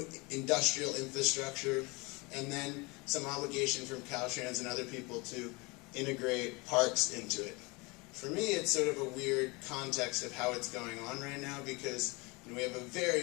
industrial infrastructure, and then some obligation from Caltrans and other people to integrate parks into it. For me, it's sort of a weird context of how it's going on right now, because we have a very,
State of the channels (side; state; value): right; quieter; 26.6 dB